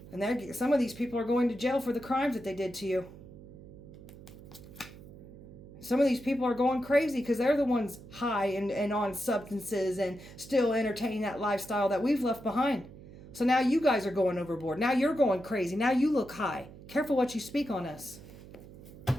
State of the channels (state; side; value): noise; right; hum, 17 dB below the sound